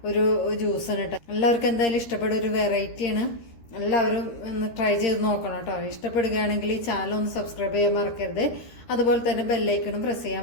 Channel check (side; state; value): right; late; 13 ms